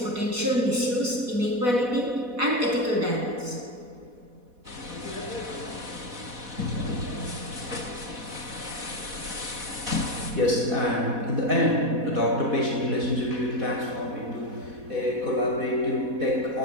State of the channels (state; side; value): late; left; 4.1 ms